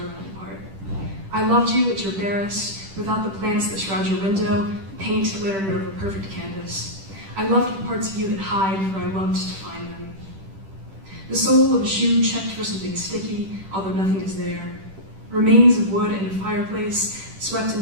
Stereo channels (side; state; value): left; late; 10 ms